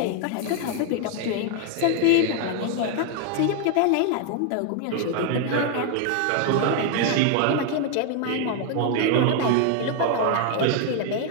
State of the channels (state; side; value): different; both; correlation 0.01